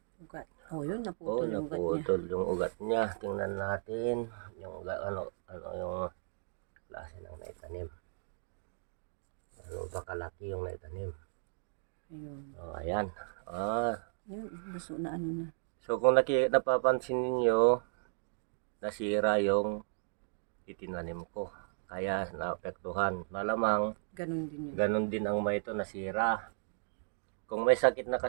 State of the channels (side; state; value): left; silent; digital silence